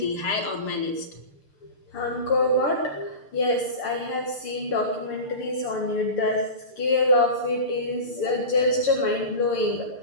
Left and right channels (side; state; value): right; late; 6.7 ms